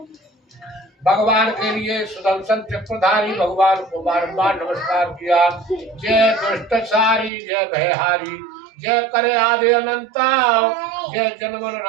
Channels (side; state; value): left; drops out; at 7.3 s